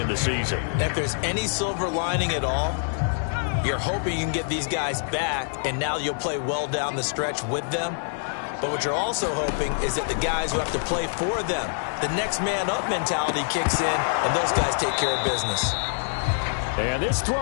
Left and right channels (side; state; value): right; silent; digital silence